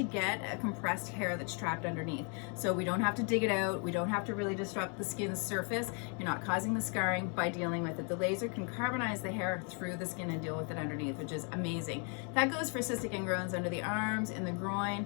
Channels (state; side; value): quieter; right; 38.0 dB